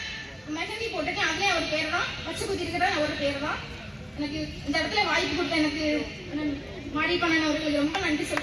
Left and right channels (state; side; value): identical; both; correlation 1.00